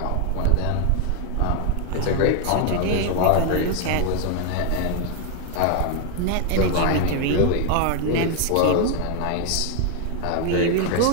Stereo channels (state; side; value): different; both; correlation 0.01